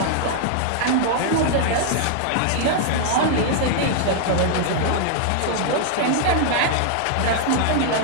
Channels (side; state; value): both; different; correlation 0.00